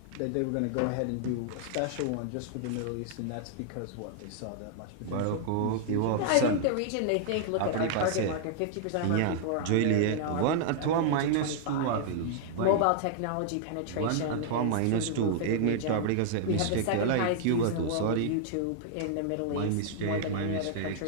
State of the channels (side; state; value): both; different; correlation -0.01